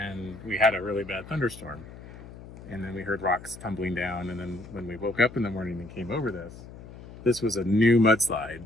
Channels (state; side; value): noise; left; hum, 16 dB below the sound